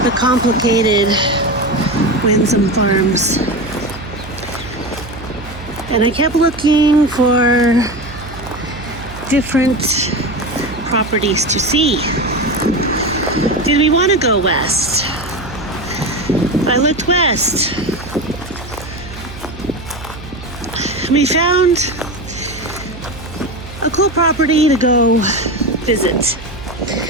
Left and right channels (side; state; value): right; noise; hum, 15 dB below the sound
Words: the complicated Winsome Farms. And I kept looking for different properties to see. Did we want to go west? I looked west. We found a cool property to go visit.